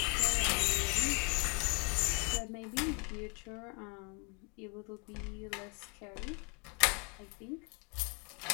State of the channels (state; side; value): quieter; right; 33.4 dB